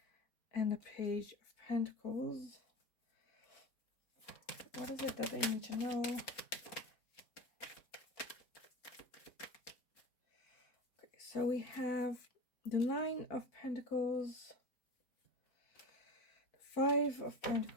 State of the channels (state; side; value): late; right; 4.3 ms